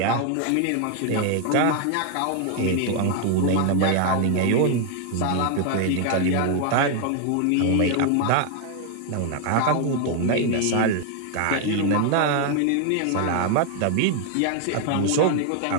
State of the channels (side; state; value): both; different; correlation 0.00